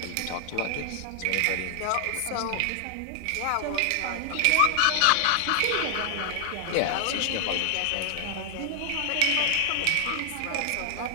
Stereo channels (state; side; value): different; both; correlation 0.00